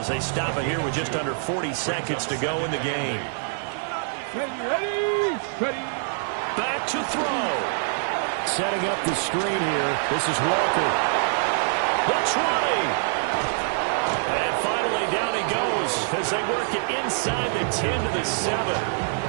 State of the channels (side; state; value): left; silent; 55 dB below the other